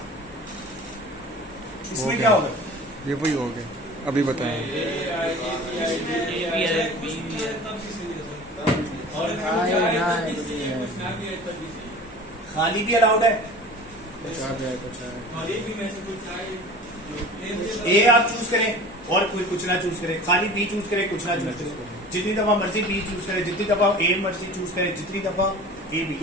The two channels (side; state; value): both; normal; correlation 0.39